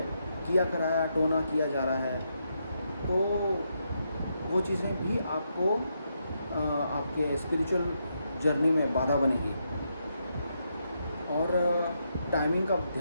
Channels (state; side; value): inverted; both; correlation -0.80